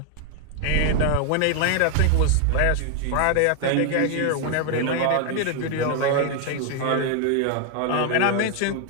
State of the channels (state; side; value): different; both; correlation 0.00